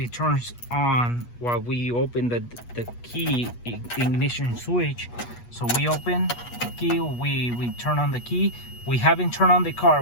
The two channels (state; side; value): late; right; 8.3 ms